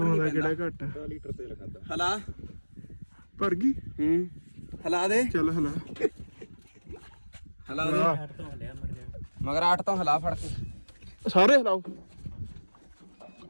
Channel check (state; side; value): inverted; both; correlation -1.00